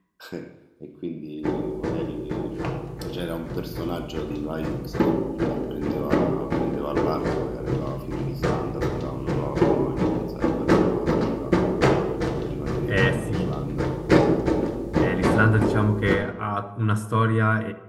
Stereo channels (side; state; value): both; identical; correlation 1.00